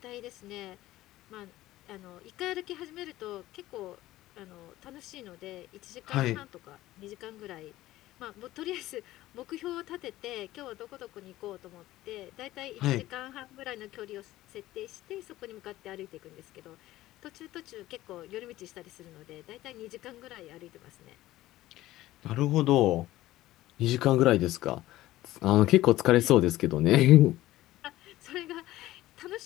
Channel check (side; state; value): right; quieter; 15.9 dB